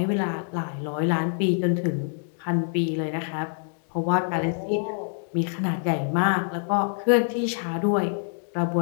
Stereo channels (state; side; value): silent; right; 61 dB below the other